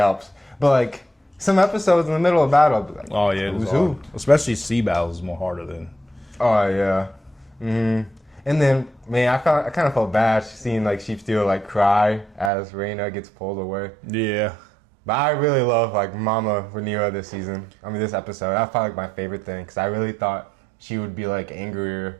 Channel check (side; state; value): left; drops out; at 12.5 s